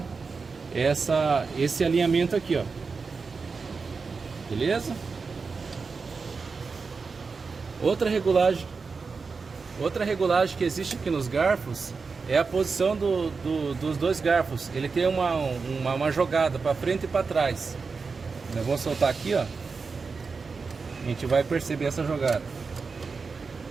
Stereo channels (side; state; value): left; quieter; 4.7 dB